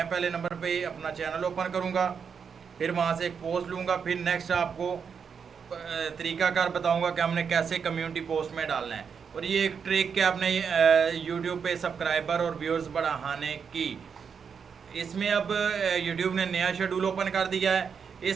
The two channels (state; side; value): quieter; left; 6.5 dB